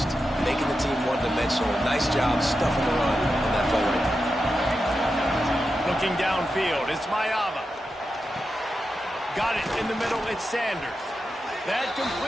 Making the team one-dimensional. Nice job stuffing the run on that play right there. Looking downfield, it's Mayava. Got it in the middle, it's Sanders. That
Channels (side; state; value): both; normal; correlation 0.89